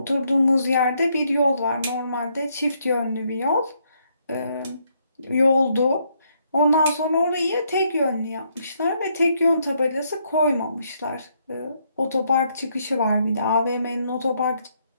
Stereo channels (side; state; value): both; inverted; correlation -0.74